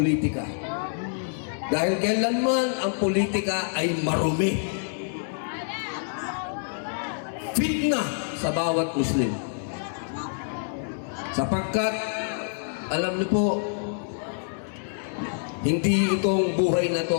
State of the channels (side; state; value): right; silent; 60 dB below the other